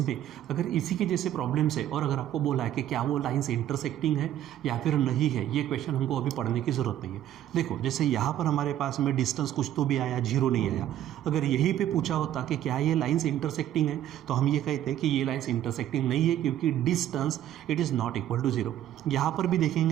में अगर इसी के जैसे प्रॉब्लम्स है और अगर आपको बोला है कि क्या वो लाइन्स इंटरसेक्टिंग है या फिर नहीं है, ये क्वेश्चन हमको अभी पढ़ने की ज़रूरत नहीं है। देखो जैसे यहाँ पर हमारे पास में डिस्टेंस कुछ तो भी आया, 0 नहीं आया। अगर यहीं पे पूछा होता कि क्या ये लाइन्स इंटरसेक्टिंग है तो हम ये कहते हैं कि ये लाइन्स इंटरसेक्टिंग नहीं है, क्योंकि distance it is not equal to 0। यहाँ पर भी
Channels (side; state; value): left; quieter; 11.9 dB